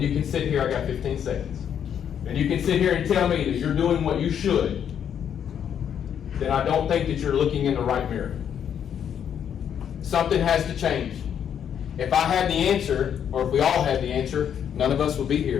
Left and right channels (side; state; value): right; quieter; 8.7 dB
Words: you can sit here, I got 15 seconds, and you can sit here and tell me that you're doing what you should, then I don't think that you're looking in the right mirror. Something has to change. If I had the answer, or if we all had the answer, none of us would be